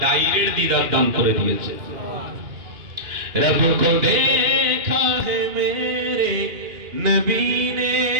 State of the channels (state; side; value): late; left; 2.9 ms